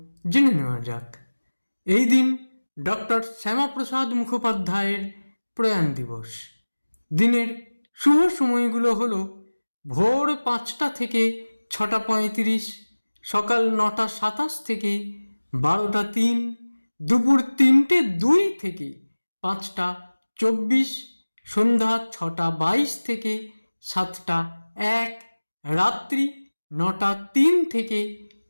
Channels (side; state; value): both; inverted; correlation -1.00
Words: জেনে নেওয়া যাক। এই দিন ডক্টর শ্যামাপ্রসাদ মুখোপাধ্যায়ের প্রয়াণ দিবস। দিনের শুভ সময়গুলো হলো ভোর 5টা থেকে 6টা 35, সকাল 9টা 27 থেকে 12টা 3, দুপুর 3টে 2 থেকে 5টা 24, সন্ধ্যা 6টা 22 থেকে 7টা 1, রাত্রি 9টা 3 থেকে